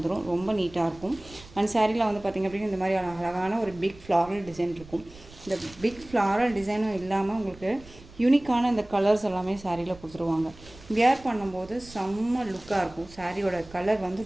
ரொம்ப நீட்டாக இருக்கும். அந்த சாரியில் வந்து பார்த்திங்க அப்படின்னா இந்த மாதிரி அழகான ஒரு பிக் ஃப்ளாரல் டிசைன் இருக்கும். இந்த பிக் ஃப்ளாரல் டிசைனும் இல்லாமல் உங்களுக்கு யூனிக்கான இந்த கலர்ஸ் எல்லாமே சாரியில் கொடுத்துருவாங்க. வியர் பண்ணும்போது செம்ம லுக்காக இருக்கும். சாரியோட கலர் வந்து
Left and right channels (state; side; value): noise; right; rumble, 20 dB below the sound